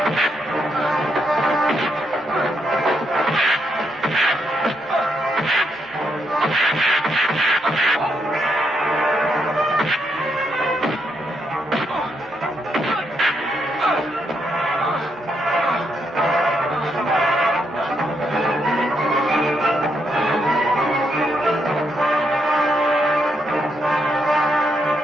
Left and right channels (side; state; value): both; normal; correlation 0.79